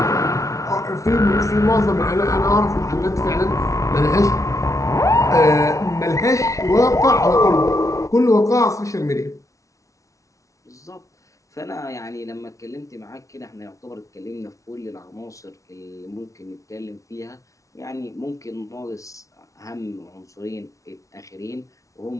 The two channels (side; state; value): right; late; 0.16 ms